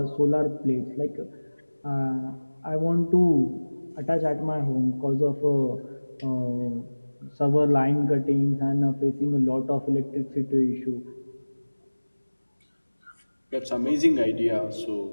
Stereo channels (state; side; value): inverted; both; correlation -1.00